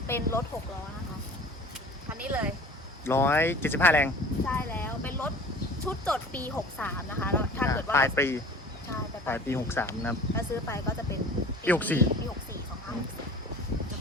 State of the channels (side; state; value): both; normal; correlation 0.44